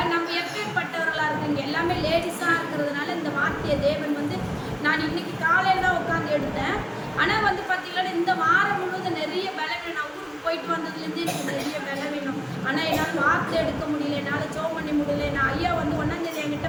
நம்ம எப்பேற்பட்டவர்களா இருக்கீங்க? எல்லாமே லேடிஸா இருக்கிறதுனால இந்த வார்த்தையை தேவன் வந்து நான் இன்னைக்கு காலையில தான் உட்காந்து எடுத்தேன். ஆனா வந்து பாத்தீங்கன்னா இந்த வாரம் முழுவதும் நிறைய பலவீனம். நான் ஊருக்கு போயிட்டு வந்ததுலேருந்து எனக்கு நிறைய பலவீனம். ஆனா என்னால் வார்த்தை எடுக்க முடியல, என்னால் ஜெபம் பண்ண முடியல. நான் ஐயா வந்து 1ஆம் தேதி என்கிட்ட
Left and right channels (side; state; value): both; identical; correlation 1.00